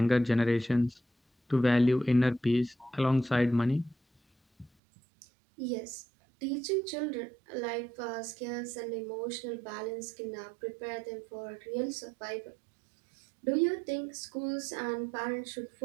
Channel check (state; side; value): drops out; left; at 4.7 s